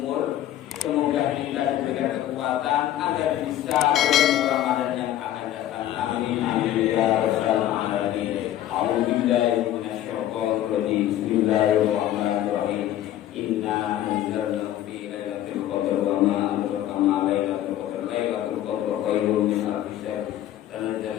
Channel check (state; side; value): quieter; right; 12.5 dB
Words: semoga kita diberikan kekuatan agar bisa bertemu Ramadan yang akan datang. Amin. amin amin ya rabbal alamin. A'udzubillahi minasyaitonir rajim. Bismillahirrahmanirrahim. Inna anzalnahu fi lailatul qadr wa ma adraka ma lailatul qadr. Lailatul qadr khairun min alfi syahr.